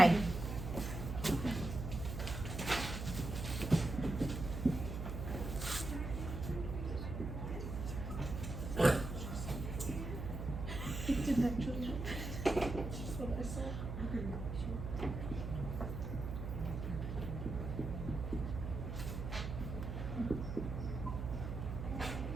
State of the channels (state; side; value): noise; right; hum, 5 dB below the sound